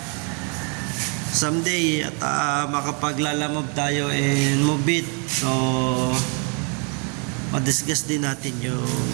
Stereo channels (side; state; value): left; quieter; 37.3 dB